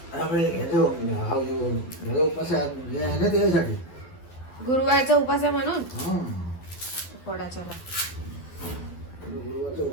गुरुवारचा उपास आहे म्हणून फोडायचा. गुरुवारचा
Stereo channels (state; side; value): late; right; 12 ms